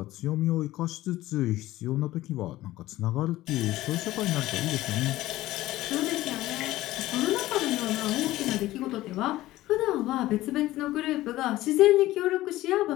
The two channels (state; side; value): quieter; right; 16.3 dB